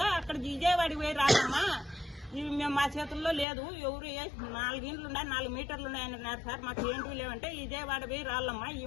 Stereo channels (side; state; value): right; drops out; at 3.5 s